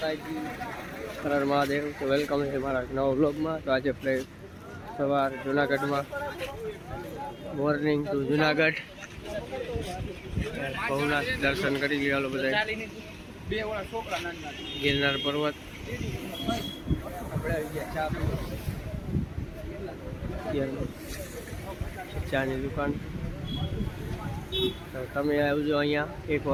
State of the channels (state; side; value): identical; both; correlation 1.00